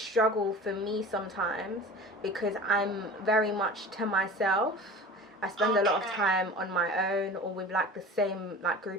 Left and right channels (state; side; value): normal; both; correlation 0.37